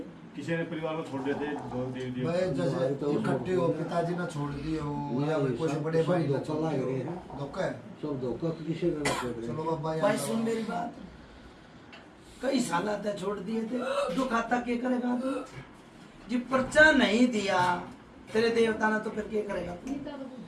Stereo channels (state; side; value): identical; both; correlation 1.00